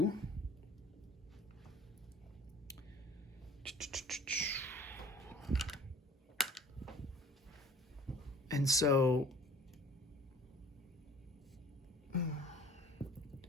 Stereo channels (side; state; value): both; normal; correlation 0.48